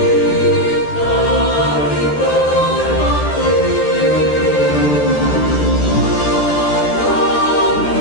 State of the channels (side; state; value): right; late; 13 ms